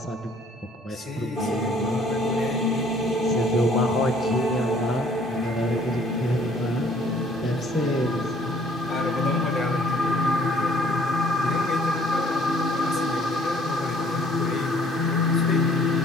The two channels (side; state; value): both; normal; correlation 0.58